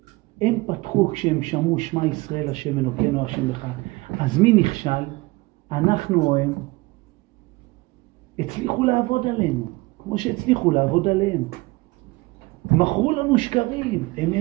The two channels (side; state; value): left; quieter; 22.6 dB